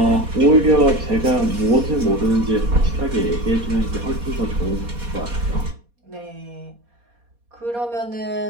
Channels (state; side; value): late; left; 4.2 ms